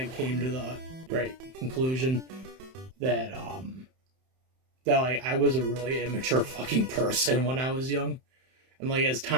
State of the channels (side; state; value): left; late; 31 ms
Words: came to the right conclusion that, I was a really immature fucking person when I was young. And, like, as